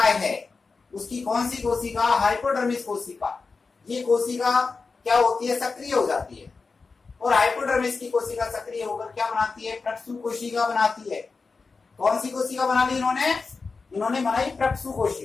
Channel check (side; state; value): right; quieter; 4.4 dB